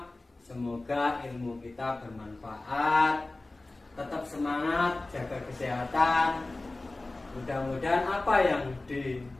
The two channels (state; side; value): quieter; right; 3.0 dB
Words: Semoga ilmu kita bermanfaat. Tetap semangat, jaga kesehatan. Mudah-mudahan apa yang